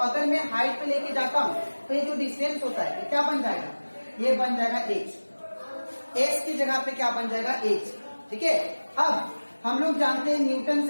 मैं हाइट पे लेके जाता हूं तो ये जो डिस्टेंस होता है ये क्या बन जाएगा, ये बन जाएगा h की जगह पे क्या बन जाएगा, h। ठीक है, अब हम लोग जानते हैं न्यूटन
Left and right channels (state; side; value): inverted; both; correlation -1.00